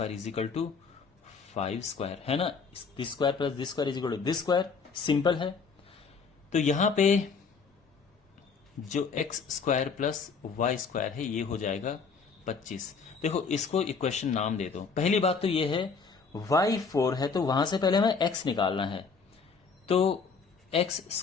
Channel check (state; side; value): quieter; right; 5.2 dB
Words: is equal to 5 square, है ना। This square plus this square is equal to this square, simple है। तो यहां पे जो x square plus y square है ये हो जाएगा 25। देखो इसको इक्वेशन नाम दे दो। पहली बात तो ये है y 4 है तो वहां से पहले हमें x निकालना है, तो x